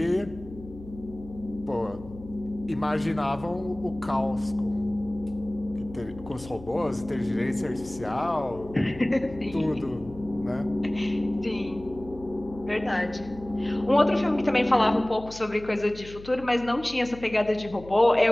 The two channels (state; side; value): noise; left; hum, 16 dB below the sound